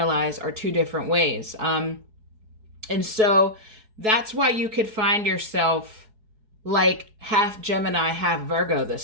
are two different ways. And so that's why you could find yourself like half Gemini, half Virgo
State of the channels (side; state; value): left; late; 4.7 ms